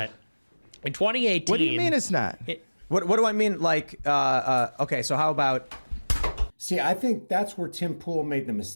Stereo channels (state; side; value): inverted; both; correlation -1.00